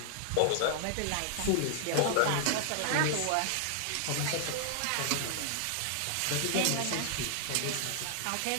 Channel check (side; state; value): both; different; correlation -0.01